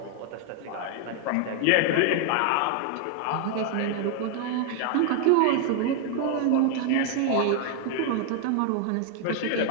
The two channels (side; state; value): both; different; correlation 0.00